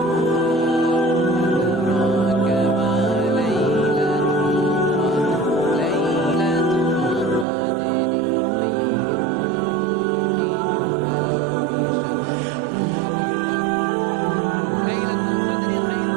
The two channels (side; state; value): left; drops out; at 7.5 s